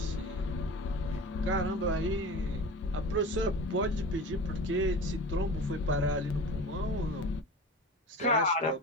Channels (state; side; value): normal; both; correlation 0.34